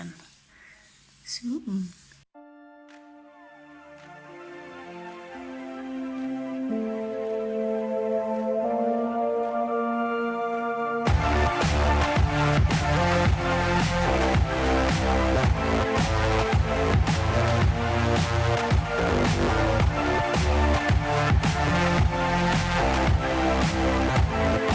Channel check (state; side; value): identical; both; correlation 1.00